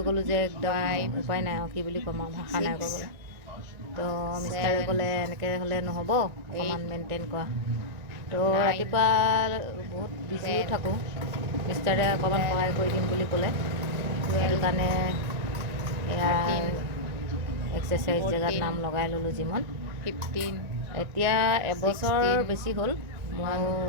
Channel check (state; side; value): late; left; 1.9 ms